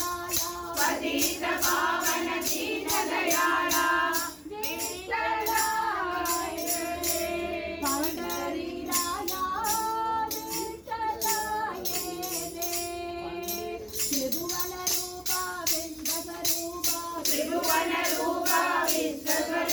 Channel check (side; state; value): both; identical; correlation 1.00